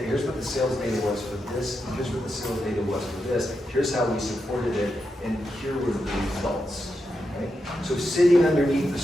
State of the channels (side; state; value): both; normal; correlation 0.86